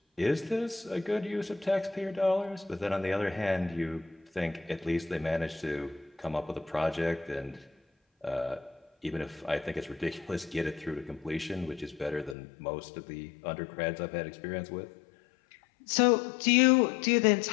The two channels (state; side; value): drops out; right; at 12.4 s